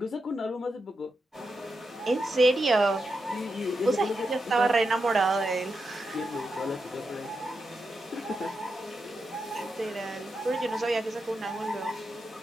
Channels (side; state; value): both; normal; correlation 0.87